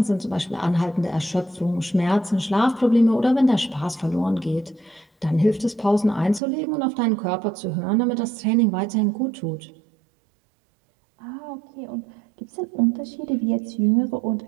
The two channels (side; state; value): left; drops out; at 6.4 s